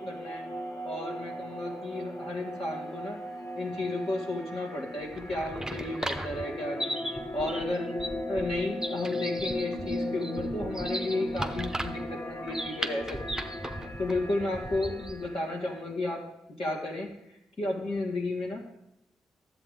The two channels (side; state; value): both; normal; correlation 0.83